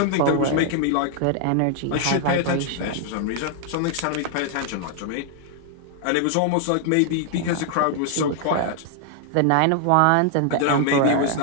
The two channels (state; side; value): different; both; correlation 0.00